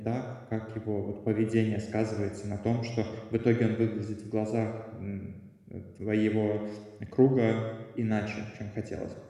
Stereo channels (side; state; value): both; identical; correlation 1.00